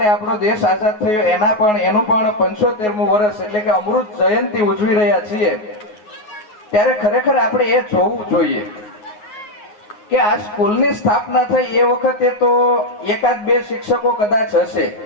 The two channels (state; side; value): late; right; 9.4 ms